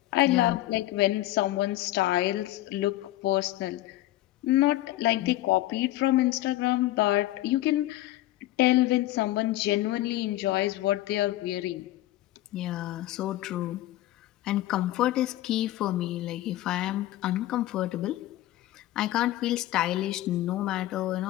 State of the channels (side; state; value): right; quieter; 15.6 dB